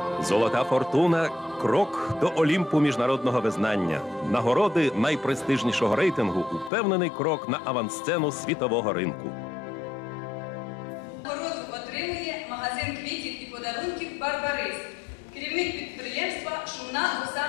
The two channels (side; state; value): right; drops out; at 6.7 s